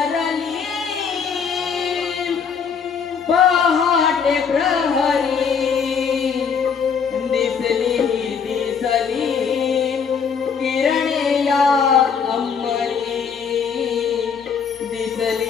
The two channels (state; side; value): quieter; right; 6.4 dB